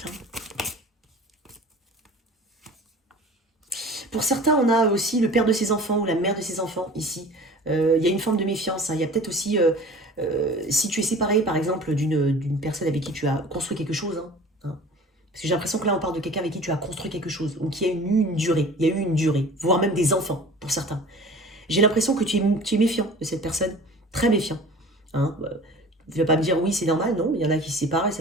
Hein. Pour certains, on a aussi le père de ses enfants ou la mère de ses enfants ici. Il y a une forme de méfiance. Hein. Il y a peut-être aussi, si tu es séparé par exemple d'une personne avec qui tu as construit quelque chose, hein. Parce que j'ai l'impression que là on parle de quelqu'un avec qui tu as construit quelque chose, ou qui a eu une durée, il y a eu une durée, voire même des enfants pour certains. J'ai l'impression que tu es méfiant de cette personne, très méfiant. Hein. Tu ne vas pas me dire oui c'est normal, non, il y en a qui se séparent et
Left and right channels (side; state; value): both; normal; correlation 0.42